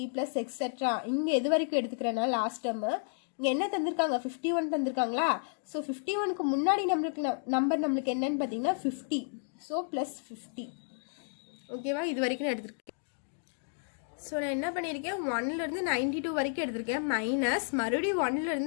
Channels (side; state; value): right; silent; digital silence